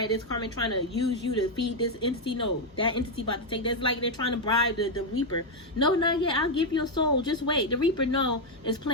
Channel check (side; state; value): both; normal; correlation 0.02